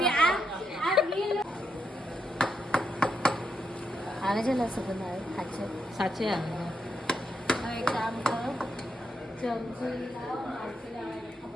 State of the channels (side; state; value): both; normal; correlation 0.82